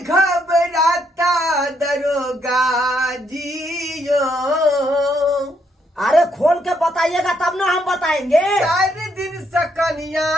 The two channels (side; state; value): both; normal; correlation 0.74